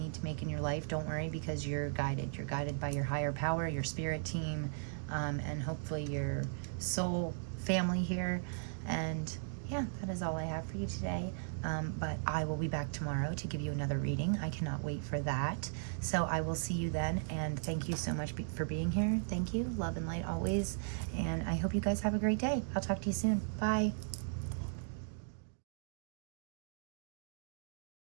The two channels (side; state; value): left; silent; digital silence